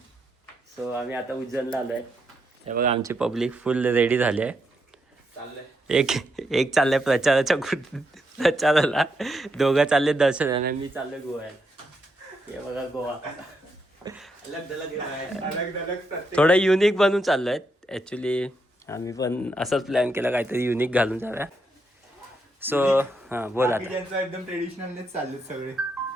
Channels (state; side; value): normal; both; correlation 0.80